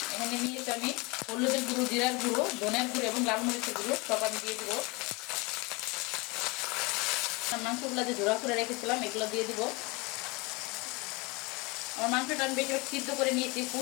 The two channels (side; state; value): right; quieter; 26.7 dB